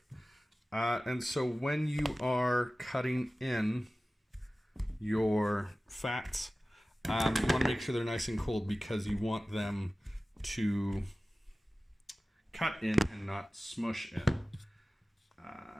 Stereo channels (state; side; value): normal; both; correlation 0.97